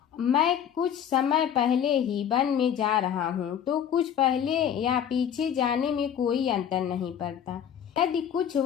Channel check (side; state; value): right; quieter; 9.0 dB